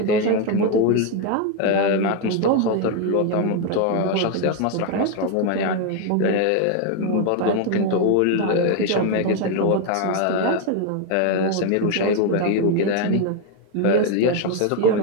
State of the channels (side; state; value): both; different; correlation 0.01